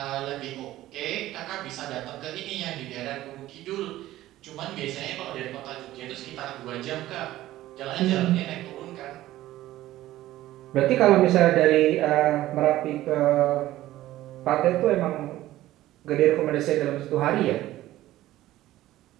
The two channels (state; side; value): quieter; left; 15.2 dB